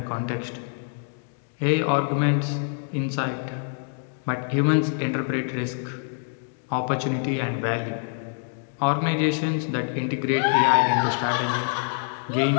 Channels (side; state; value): right; silent; 61 dB below the other